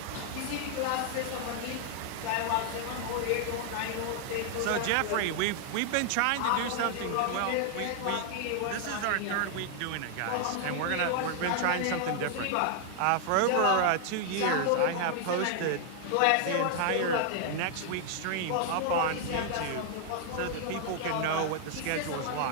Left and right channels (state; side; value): different; both; correlation 0.00